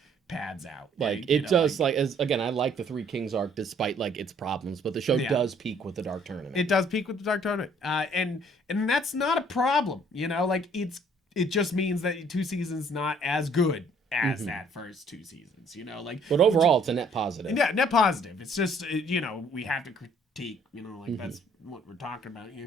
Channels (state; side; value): normal; both; correlation 0.61